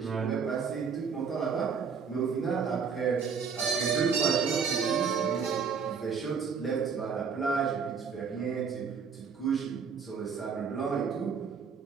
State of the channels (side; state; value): left; quieter; 6.1 dB